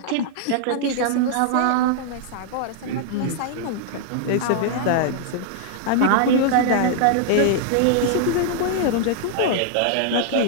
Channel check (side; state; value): both; different; correlation -0.01